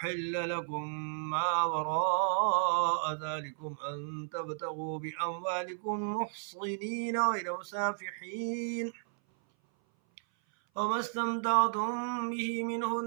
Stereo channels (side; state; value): left; silent; 56 dB below the other